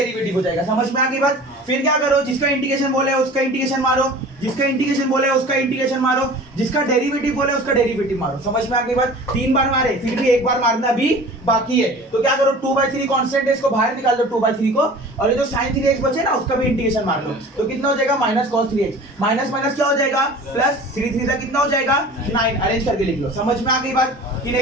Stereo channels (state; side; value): normal; both; correlation 0.41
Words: हो जाएगा, समझ में आ गई बात, फिर क्या करो, जिसका इंटीग्रेशन बोले उसका इंटीग्रेशन मारो, जिसका इंटीग्रेशन बोले उसका इंटीग्रेशन मारो, जिसका डेरिवेटिव बोले उसका डेरिवेटिव मारो, समझ में आ गई बात, 3 बार मारे, फिर भी एक बार मारना भी बाकी है, तो क्या करो 2/3 कांस्टेंट है, इसको बाहर निकाल दो 2/3 को, और ये जो sin 3x बचे ना उसका भी इंटीग्रेशन मार लो, तो कितना हो जाएगा -cos 3x, माइनस माइनस क्या हो जाएगा प्लस, 3 का कितना हो जाएगा 9, अरेंज करके लिख लो, समझ में आ गई बात कि